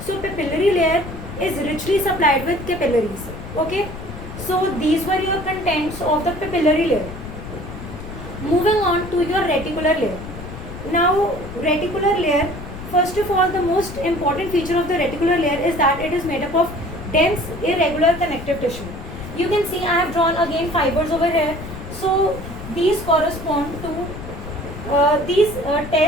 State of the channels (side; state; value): left; noise; rumble, 11 dB below the sound